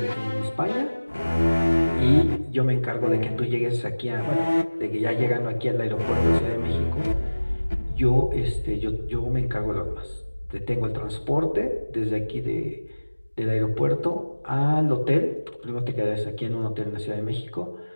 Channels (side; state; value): both; inverted; correlation -1.00